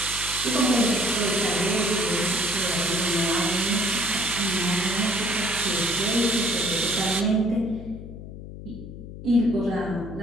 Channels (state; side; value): noise; left; hum, 12 dB below the sound